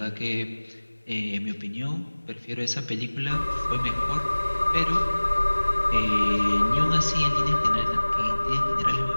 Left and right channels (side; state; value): both; inverted; correlation -1.00